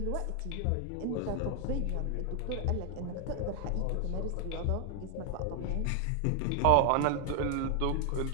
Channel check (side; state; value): both; different; correlation 0.00